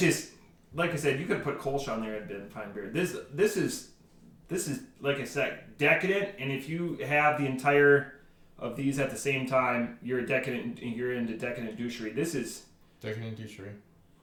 like I said, you could put Kolsch on there and been fine beer. This is like I said, decadent. And if you have the entire of these at the same time, you're into decadent douchery. This is decadent douchery.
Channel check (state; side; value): identical; both; correlation 1.00